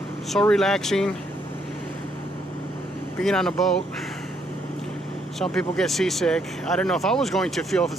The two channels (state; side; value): normal; both; correlation 0.72